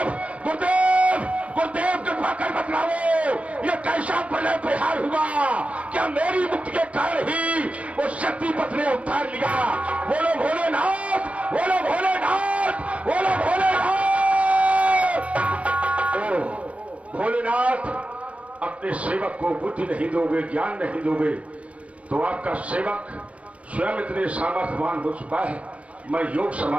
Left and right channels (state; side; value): late; left; 0.064 ms